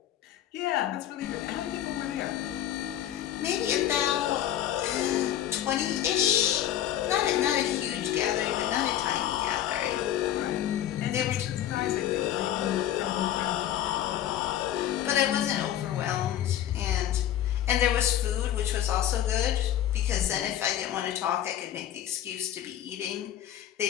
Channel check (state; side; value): quieter; right; 11.5 dB